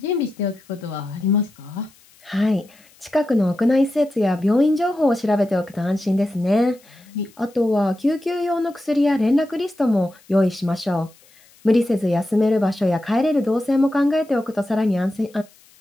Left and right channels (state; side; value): noise; left; hiss, 29 dB below the sound